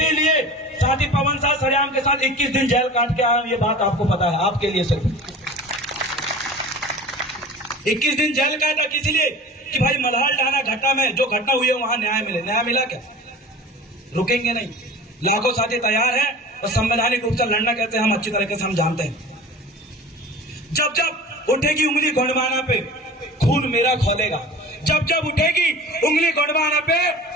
लिए साथी पवन साह सरेआम के साथ 21 दिन जेल काट के आया, ये बात आपको पता है। आपके लिए सिर्फ 21 दिन जेल काटा, किस लिए? कि भाई मल्हार डाना घटना में जो घटना हुई है वहां न्याय मिले। न्याय मिला क्या? रुकेंगे नहीं। लाखों साथी तैयार हैं और संवैधानिक रूप से लड़ना कैसे हम अच्छी तरीके से हम जानते हैं। जब जब उठेगी उंगली गोंडवाना पे, खून मेरा खोलेगा। जब जब उठेगी उंगली गोंडवाना पे,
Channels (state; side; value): normal; both; correlation 0.38